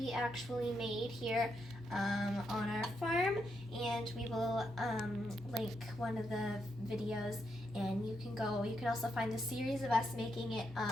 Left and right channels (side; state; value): both; normal; correlation 0.81